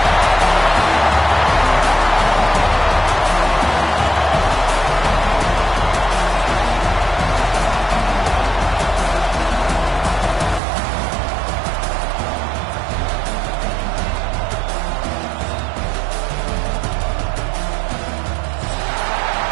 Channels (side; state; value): left; drops out; at 10.6 s